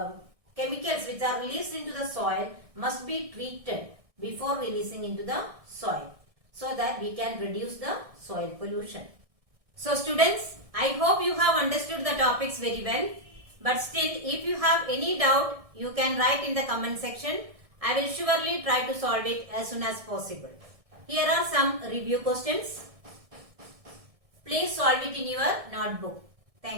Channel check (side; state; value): left; late; 1.6 ms